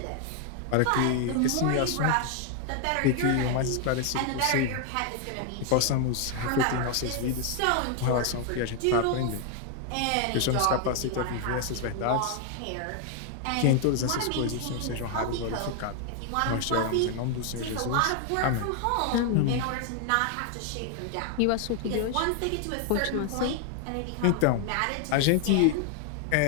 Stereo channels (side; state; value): both; different; correlation 0.00